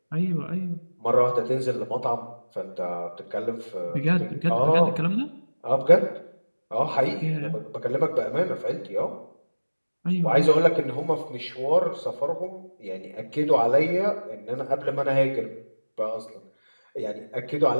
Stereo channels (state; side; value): inverted; both; correlation -1.00